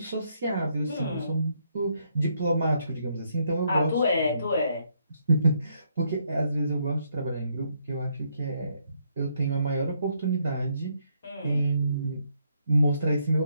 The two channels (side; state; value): both; inverted; correlation -0.73